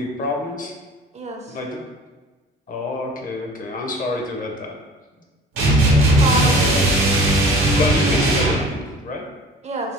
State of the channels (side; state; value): both; normal; correlation 0.44